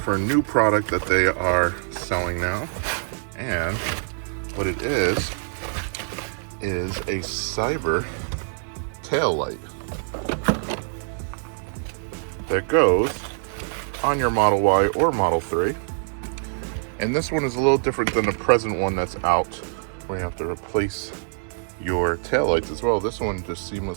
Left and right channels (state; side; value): silent; left; 62 dB below the other